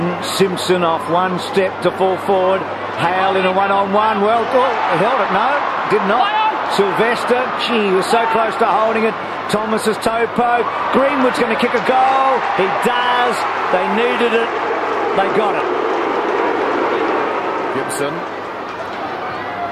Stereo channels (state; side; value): identical; both; correlation 1.00